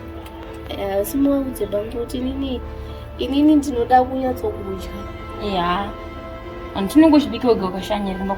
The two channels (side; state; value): both; identical; correlation 1.00